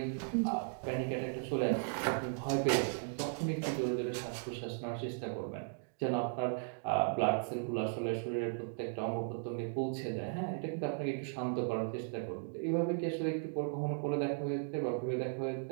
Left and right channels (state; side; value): silent; left; digital silence